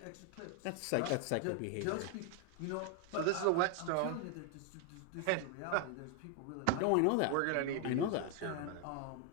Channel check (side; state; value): both; different; correlation 0.01